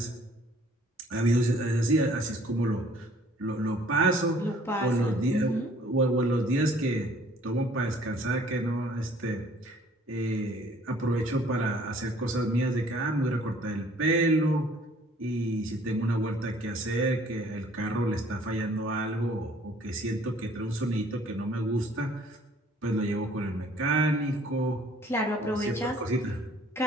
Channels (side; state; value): both; normal; correlation 0.56